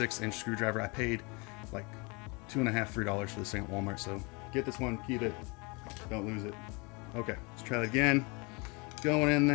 screwdriver. I paid like $2.50, $3 for this thing at Walmart. So get this one, keep it, don't lose it. Okay, let's try that again. Going in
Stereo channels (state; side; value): quieter; right; 29.4 dB